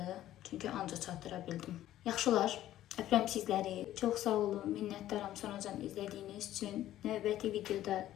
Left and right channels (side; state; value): right; quieter; 13.3 dB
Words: çünki ancaq çatdıra bildim. Yaxşılar, öpürəm sizləri, çox sağ olun, minnətdaram sonacan izlədiyiniz üçün. Növbəti videoda